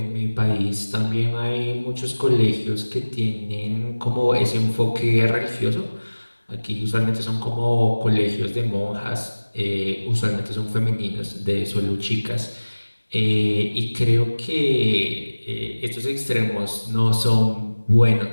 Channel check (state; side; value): inverted; both; correlation -1.00